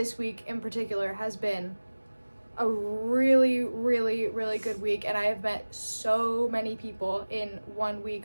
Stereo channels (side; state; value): both; inverted; correlation -1.00